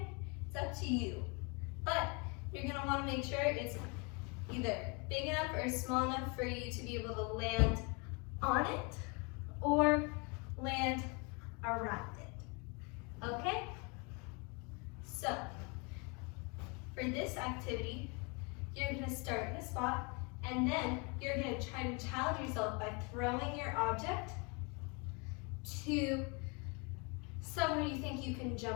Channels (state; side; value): quieter; right; 31.7 dB